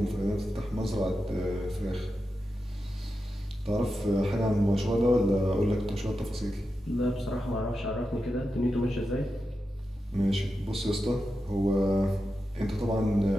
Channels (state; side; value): normal; both; correlation 0.90